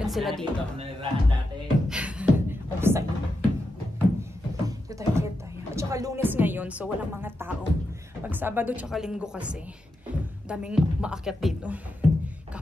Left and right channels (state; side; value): normal; both; correlation 0.87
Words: sila dito. Nanirahan dati. Oh, sa'yo. Dito tayo, dito tayo. At saka Lunes ngayon, so walang mga tao. Pag Sabado tsaka Linggo kasi, daming maakyat dito.